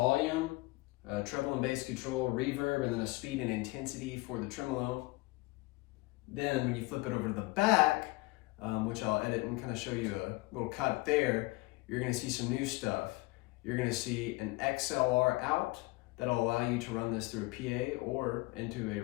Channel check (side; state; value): right; quieter; 22.8 dB